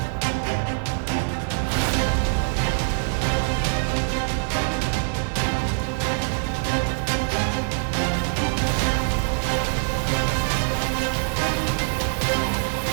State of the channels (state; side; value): silent; left; digital silence